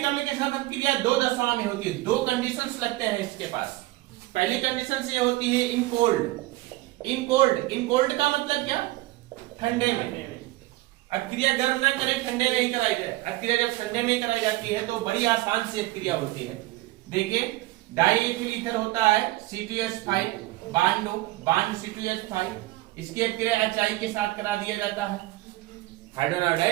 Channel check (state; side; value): quieter; left; 18.9 dB